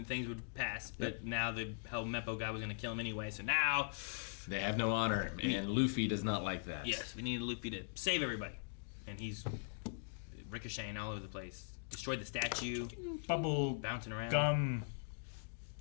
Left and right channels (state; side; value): silent; right; digital silence